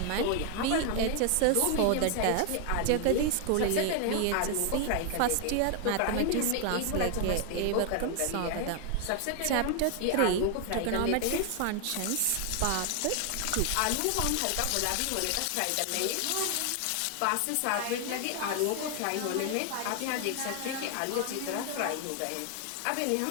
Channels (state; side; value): different; both; correlation 0.00